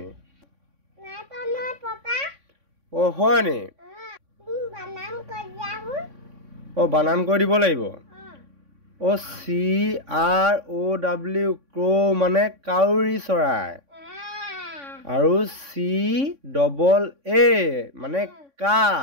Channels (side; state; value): left; late; 3.6 ms